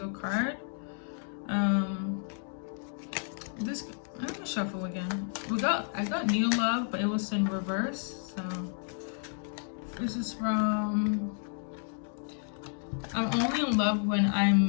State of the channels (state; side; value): silent; right; 57 dB below the other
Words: card. I'm gonna shuffle again. I got new love, but it was in reverse. So This is from, I'm only in love when